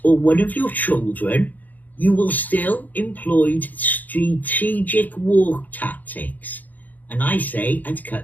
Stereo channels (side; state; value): right; late; 0.083 ms